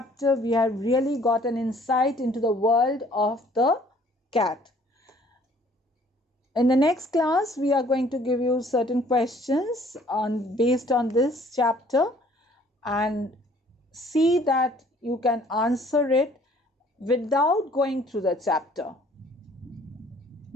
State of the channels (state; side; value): normal; both; correlation 0.57